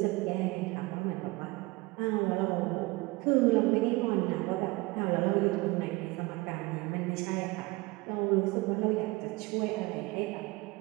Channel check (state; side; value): quieter; left; 23.1 dB